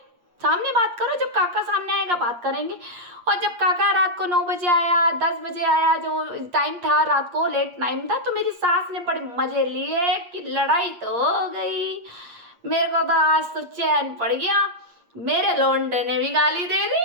सामने बात करो, जब काका सामने आएगा बात करेंगे। और जब काका रात को 9 बजे आया, 10 बजे आया, जो टाइम था रात को लेट टाइम था, तो मेरी सास ने बड़े मजे लिए कि लड़ाई तो हो गई। मेरे को तो आज तो चैन पड़ गया, मेरे लौंडे ने भी गाली दे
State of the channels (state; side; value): late; left; 8.5 ms